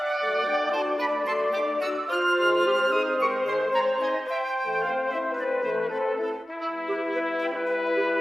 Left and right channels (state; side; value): normal; both; correlation 0.95